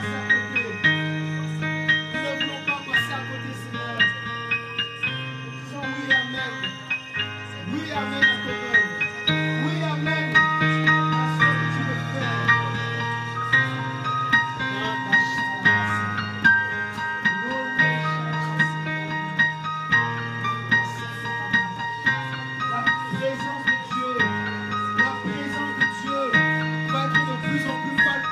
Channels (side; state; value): both; identical; correlation 1.00